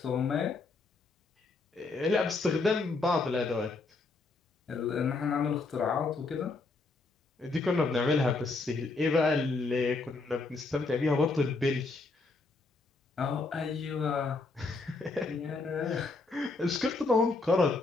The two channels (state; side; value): quieter; right; 3.8 dB